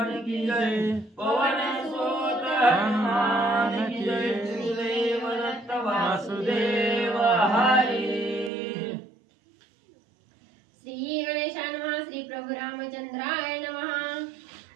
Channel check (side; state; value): left; drops out; at 8.5 s